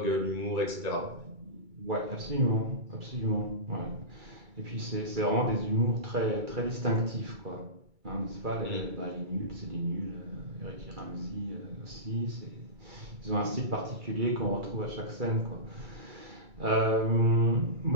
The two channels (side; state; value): left; late; 2.3 ms